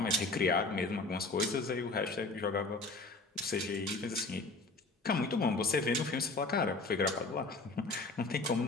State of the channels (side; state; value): right; quieter; 3.4 dB